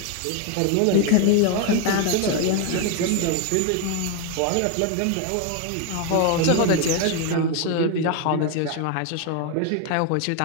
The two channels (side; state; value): both; different; correlation 0.01